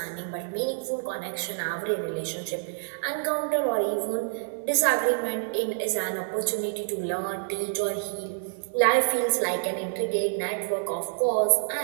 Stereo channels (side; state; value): left; silent; digital silence